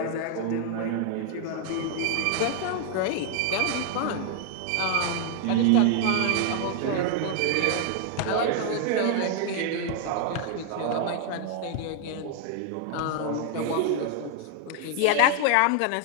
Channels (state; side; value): different; both; correlation 0.00